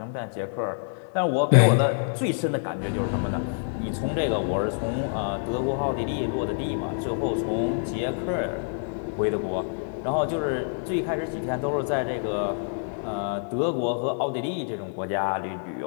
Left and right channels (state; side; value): silent; right; digital silence